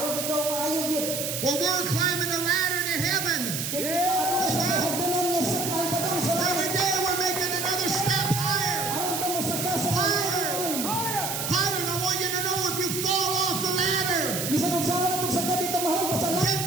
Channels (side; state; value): right; noise; hiss, 3 dB below the sound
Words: ikaw maayog yun. Well, we're climbing the ladder to heaven. Kaya kita ato sa hagdanan niya sa ay patong sa Every langit. day we're making another step higher. Aron ka mo sa kasa. Higher. Higher. And I want you to know if you fall off the ladder, Bisa kung saan na itong sagad dito mahal pa sa langit. get